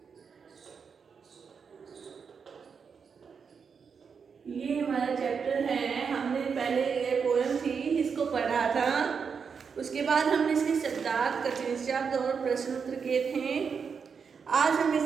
ये हमारा चैप्टर है। हमने पहले ये पोएम थी इसको पढ़ा था, उसके बाद हमने इसके शब्दार्थ कठिन शब्द और प्रश्न उत्तर किए थे। आज हम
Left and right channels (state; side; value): quieter; left; 6.1 dB